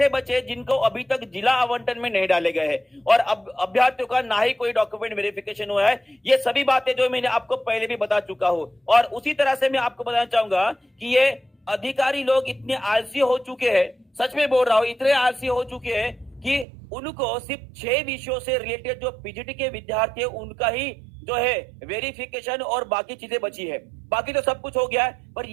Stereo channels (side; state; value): left; drops out; at 16.7 s